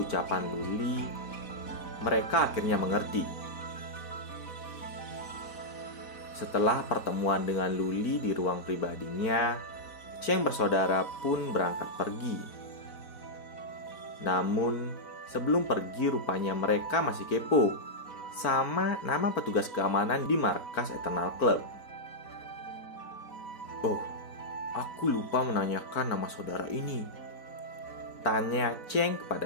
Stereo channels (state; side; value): late; right; 4.5 ms